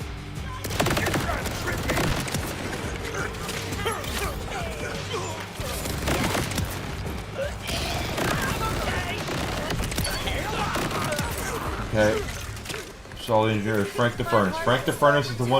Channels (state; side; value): identical; both; correlation 1.00